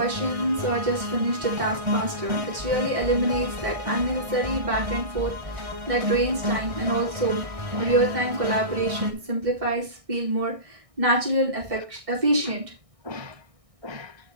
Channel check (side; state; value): left; late; 1.6 ms